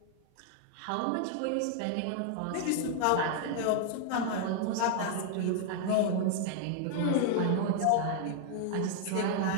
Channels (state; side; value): different; both; correlation 0.00